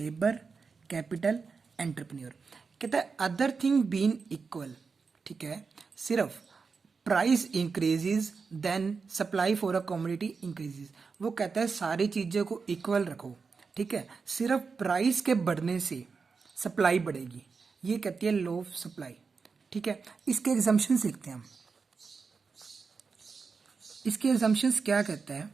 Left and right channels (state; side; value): quieter; left; 5.0 dB